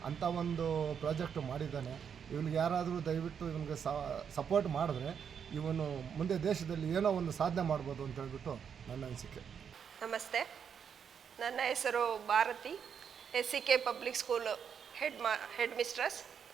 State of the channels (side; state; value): left; quieter; 7.4 dB